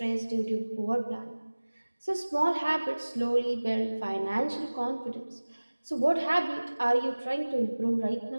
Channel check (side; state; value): both; inverted; correlation -1.00